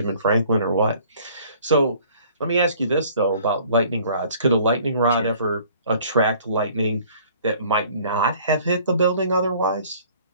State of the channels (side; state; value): both; inverted; correlation -0.54